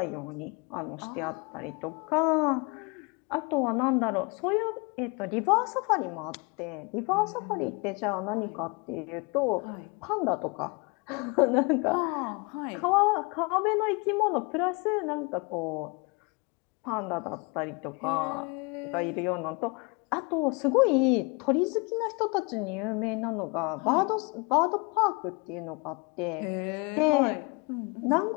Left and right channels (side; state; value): right; quieter; 30.0 dB